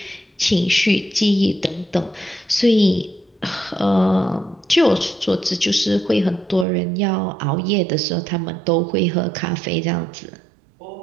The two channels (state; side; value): drops out; left; at 6.7 s